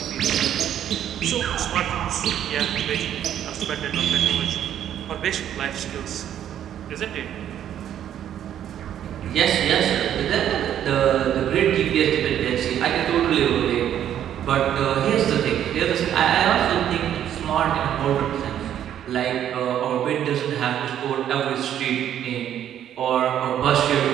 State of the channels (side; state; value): left; quieter; 10.5 dB